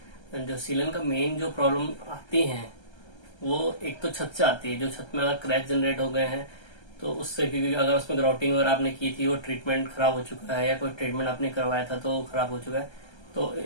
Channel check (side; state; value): right; late; 1.3 ms